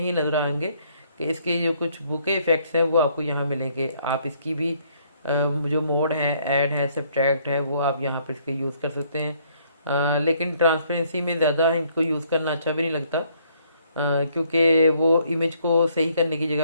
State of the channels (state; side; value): inverted; both; correlation -0.66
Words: नज़र आएंगे कि इसके जो कुछ बुके इफेक्ट्स हैं वो आपको यहाँ मिलेंगे। आप इसकी भी जो मोड है, ऐड है, सब्ट्रैक्ट है, वो आप यहाँ पर इसके यूज़ कर सकते हैं। लेकिन ट्रांसपेरेंसी में ज़्यादा इनको यूज़ करना अच्छा भी नहीं लगता, क्योंकि वो इमेज को सही करने की